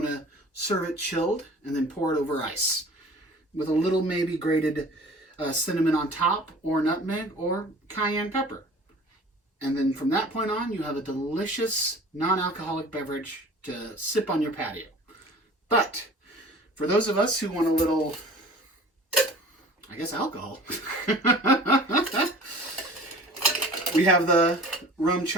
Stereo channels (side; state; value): both; normal; correlation 0.44